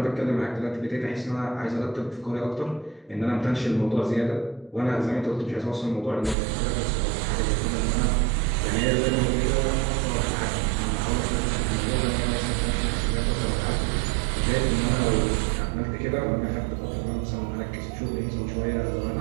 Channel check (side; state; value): left; drops out; at 6.4 s